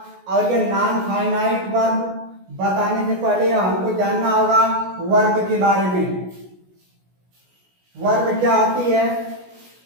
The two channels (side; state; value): left; late; 16 ms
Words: और ये नॉन फाइनाइट वर्ब बताने से पहले हमको जानना होगा वर्ब के बारे में। वर्ब क्या होती है?